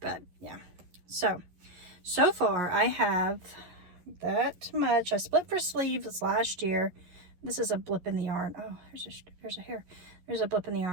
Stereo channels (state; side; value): late; left; 11 ms